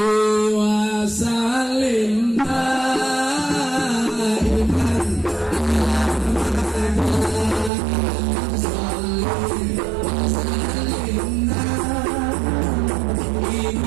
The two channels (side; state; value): left; drops out; at 7.7 s